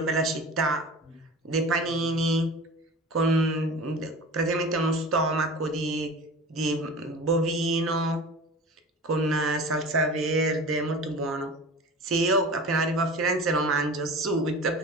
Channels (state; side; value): normal; both; correlation 0.37